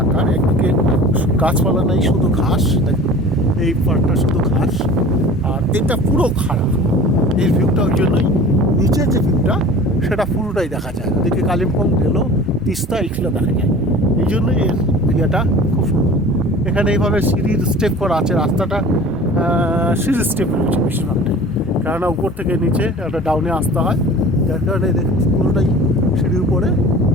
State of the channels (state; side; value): normal; both; correlation 0.42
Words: আকার, একদিকে গাছপালা নেই, শুধু ঘাস, এই পাহাড়টা শুধু ঘাস, আর এটা পুরো খাড়া। এই ভিউটা ওই জন্যই, নিচের যে ভিউটা সেটা পুরোটাই দেখা যায়, ওদিকে কালিম্পং গেল, তিস্তা এগুলো দেখা যায়। এই জন্যই এর জায়গাটা খুব সুন্দর। এখানে এইভাবে সিঁড়ির স্টেপ করা আছে, রাস্তাটা সিঁড়ির স্টেপ রয়েছে বেশিরভাগটাই, কেননা উপর থেকে নিচে একটা ডাউনে আসতে হয়, যার কারণে দেখুন পুরোটাই সিঁড়ির উপরে,